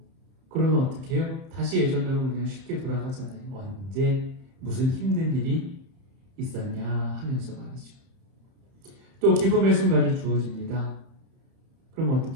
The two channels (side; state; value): left; late; 31 ms